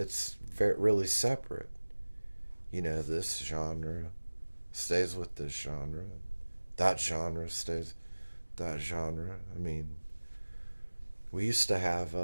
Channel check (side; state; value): both; inverted; correlation -1.00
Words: really separate. This genre stays with this genre, that genre stays that genre. I mean, we used to have